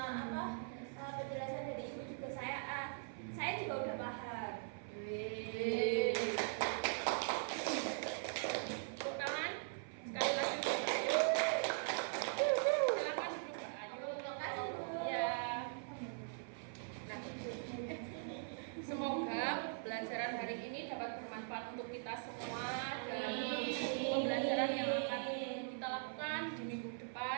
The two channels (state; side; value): silent; left; 50 dB below the other